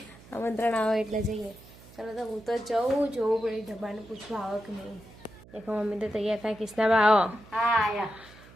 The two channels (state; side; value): noise; right; hum, 22 dB below the sound